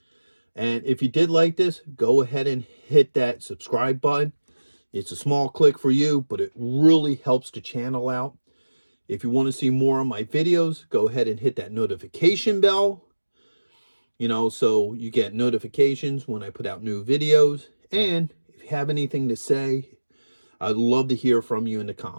And if you did like this, go ahead and hit that subscribe button. It's a small click for you, but it really helps the channel out. If you want to see more of my videos, go ahead and hit that notification bell, you know, so you get notifications when I put out new videos. And if you have anything to say, I'd love to hear from you in the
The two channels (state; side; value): inverted; both; correlation -1.00